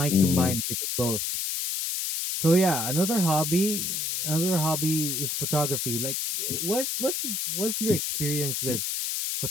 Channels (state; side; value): noise; left; hiss, 1 dB below the sound